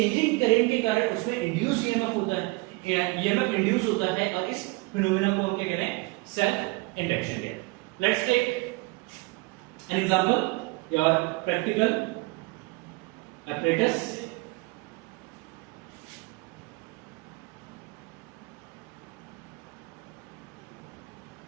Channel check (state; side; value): quieter; left; 24.9 dB